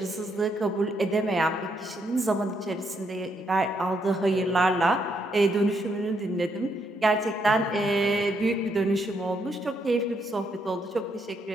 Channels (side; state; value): both; normal; correlation 0.76